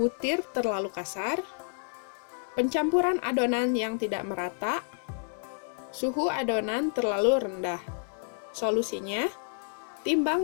terlalu kasar. Pencampuran adonan yang tidak merata. Suhu adonan terlalu rendah. Solusinya,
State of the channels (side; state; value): right; silent; 58 dB below the other